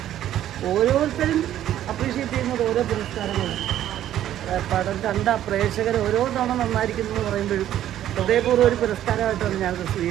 ഓരോരുത്തരും അപ്രീഷിയേറ്റ് ചെയ്യുന്നത് ഓരോ പുരസ്കാരങ്ങളാണ്. പടം കണ്ട പ്രേക്ഷകർ ഓരോ തവണ നന്നായിരിക്കുന്നു എന്ന് പറയുമ്പോഴും ഹൃദയപൂർവ്വം ഒരു പുരസ്കാരമായിട്ടാണ് ഞാനത്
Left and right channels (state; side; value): quieter; left; 11.9 dB